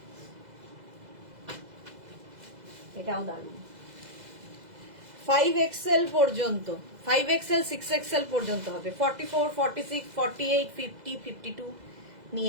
এটাও দারুণ। 5XL পর্যন্ত, 5XL 6XL পর্যন্ত হবে। 44, 46, 48, 50, 52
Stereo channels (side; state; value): left; late; 2.0 ms